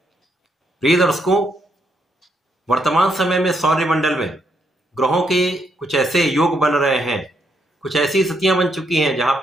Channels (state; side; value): normal; both; correlation 0.76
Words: प्रिय दर्शकों, वर्तमान समय में सौरमंडल में ग्रहों के कुछ ऐसे योग बन रहे हैं, कुछ ऐसी स्थितियां बन चुकी हैं जहां